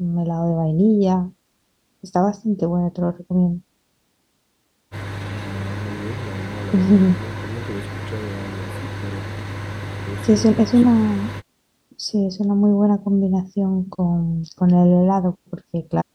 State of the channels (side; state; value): both; identical; correlation 1.00